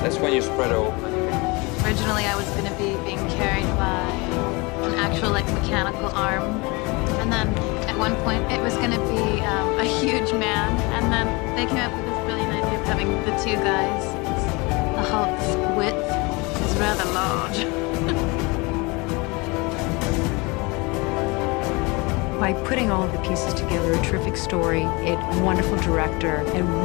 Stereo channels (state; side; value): quieter; right; 26.5 dB